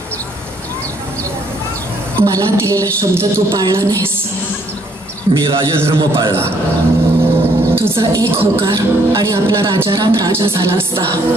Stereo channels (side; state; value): both; normal; correlation 0.67